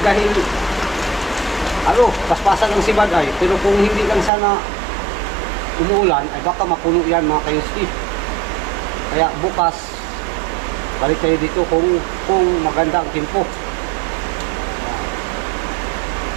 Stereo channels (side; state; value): left; drops out; at 4.3 s